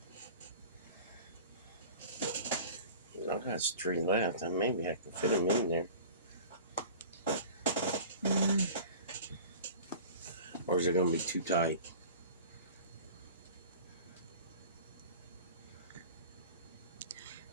got 3 left. And maybe I can fit them in there. Or is it going to be too tight?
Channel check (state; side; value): inverted; both; correlation -0.40